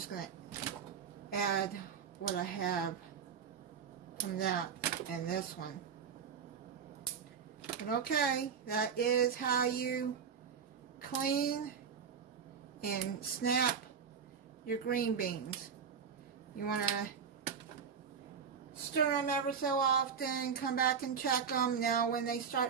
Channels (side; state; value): left; quieter; 6.8 dB